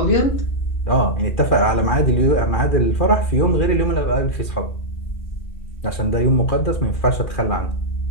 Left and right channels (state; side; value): late; right; 2.4 ms